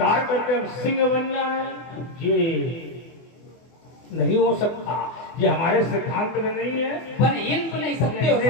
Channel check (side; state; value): right; late; 24 ms